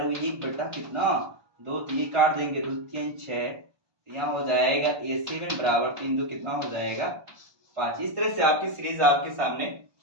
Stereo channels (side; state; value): left; late; 1.2 ms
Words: 1 बटा कितना 2, तो ये काट देंगे 2 3 6, यहाँ हो जाएगा A7 बराबर 3 2 कितना हो जाएगा 5। इस तरह से आपकी सीरीज आपके सामने